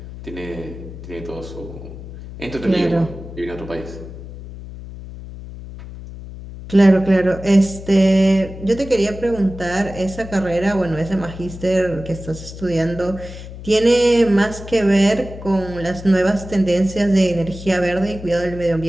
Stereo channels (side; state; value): left; noise; hum, 13 dB below the sound